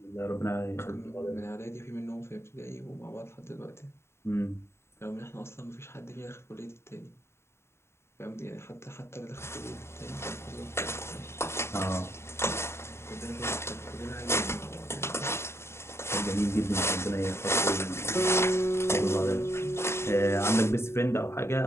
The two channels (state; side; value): late; right; 0.13 ms